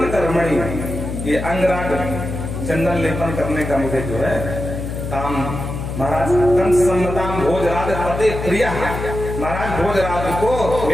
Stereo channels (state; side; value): noise; left; hum, 6 dB below the sound